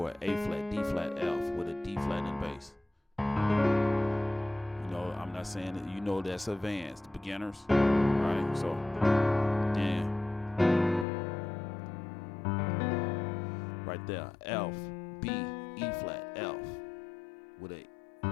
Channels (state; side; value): drops out; right; at 11.1 s